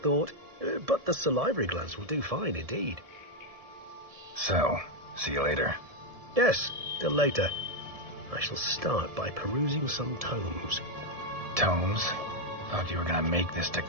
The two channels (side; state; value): left; late; 1.7 ms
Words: but the salivary glands will do fine indeed. So, see you later. Yes, till later. I shall start by perusing some tomes. Tomes? Thought you were gonna make this